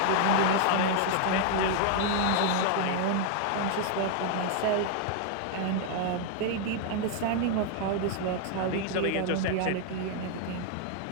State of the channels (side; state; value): both; different; correlation 0.00